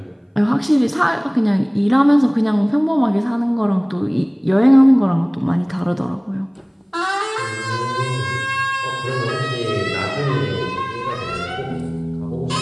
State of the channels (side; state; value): both; identical; correlation 1.00